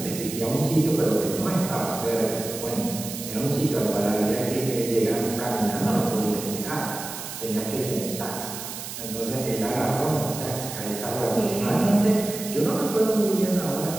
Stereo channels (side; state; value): right; noise; hiss, 9 dB below the sound